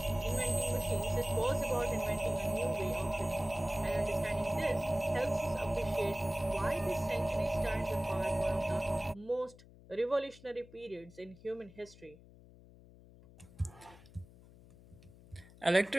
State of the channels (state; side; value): noise; left; hum, 22 dB below the sound